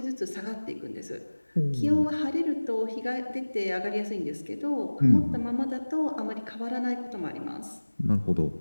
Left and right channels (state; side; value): inverted; both; correlation -1.00